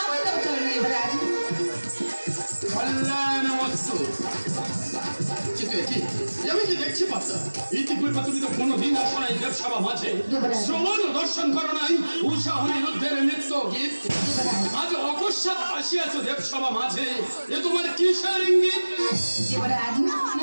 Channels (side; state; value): both; inverted; correlation -1.00